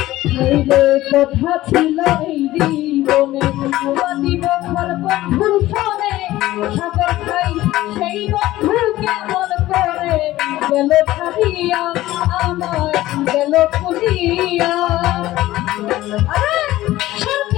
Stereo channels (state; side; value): quieter; right; 16.0 dB